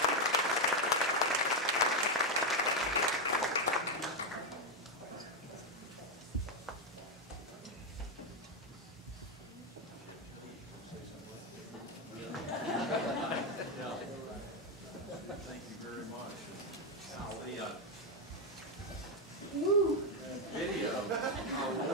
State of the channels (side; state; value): both; normal; correlation 0.05